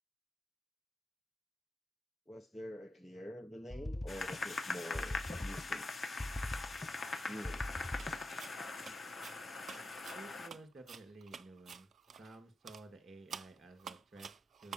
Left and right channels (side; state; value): both; normal; correlation 0.90